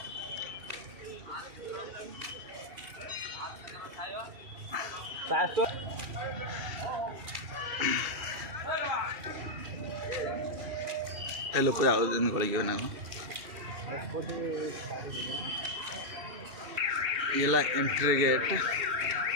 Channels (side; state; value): left; late; 2.7 ms